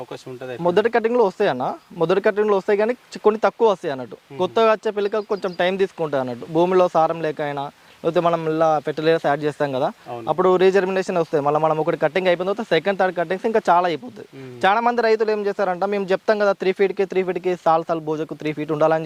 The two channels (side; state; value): both; identical; correlation 1.00